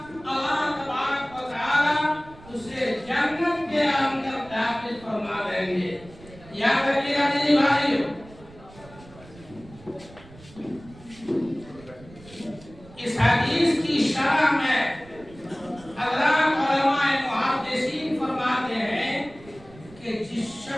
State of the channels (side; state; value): right; noise; rumble, 21 dB below the sound